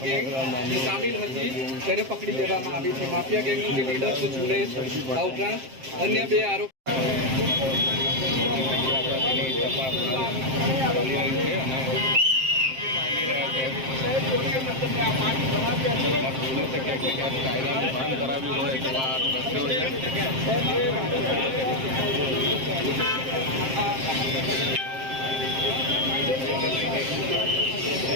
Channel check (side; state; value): left; late; 7.6 ms